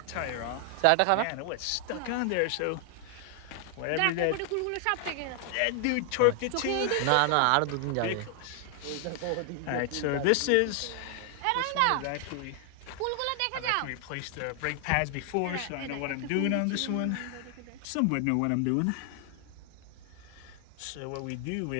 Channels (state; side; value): different; both; correlation 0.00